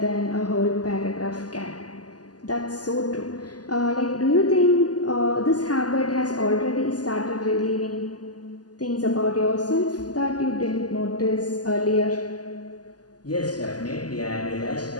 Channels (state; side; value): late; right; 0.68 ms